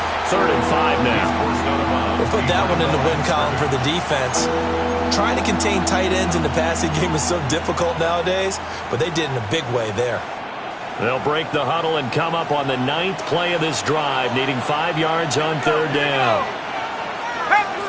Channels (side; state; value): both; identical; correlation 1.00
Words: 3rd and 5 now. We'll put that one in the win column for the defense. Trying to contain tight ends in the passing game is so difficult nowadays, but they did in a big way there. They'll break the huddle and come up on the 9th play of this drive, needing 5 yards on 3rd down.